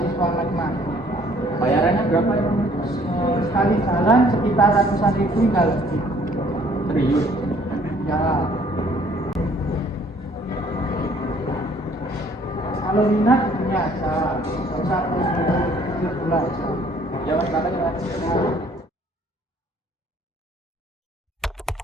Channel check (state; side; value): normal; both; correlation 0.59